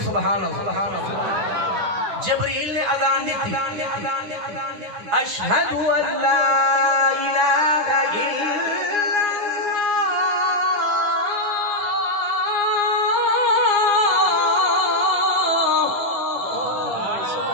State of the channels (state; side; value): late; left; 9.7 ms